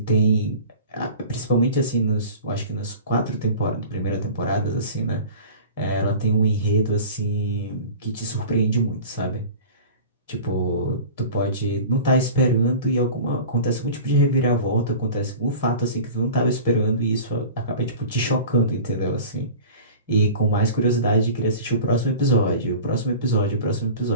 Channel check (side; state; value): both; inverted; correlation -0.39